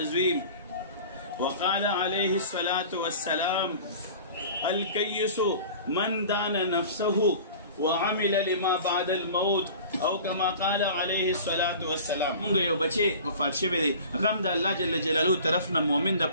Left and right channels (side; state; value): both; inverted; correlation -0.41